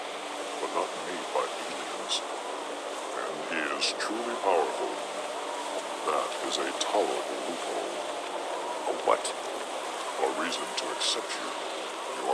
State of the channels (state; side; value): identical; both; correlation 1.00